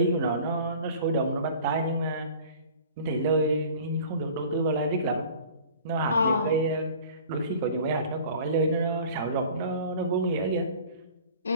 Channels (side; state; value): both; inverted; correlation -0.45